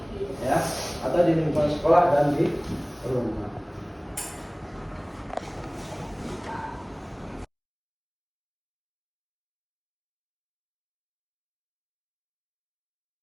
ya, ada di lingkungan sekolah dan di rumah.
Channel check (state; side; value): identical; both; correlation 1.00